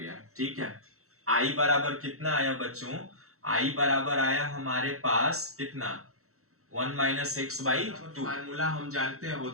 ठीक है, I बराबर कितना आया बच्चों, I बराबर आया हमारे पास कितना, 1 माइनस x/2। फार्मूला हम जानते हैं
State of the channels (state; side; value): late; left; 0.64 ms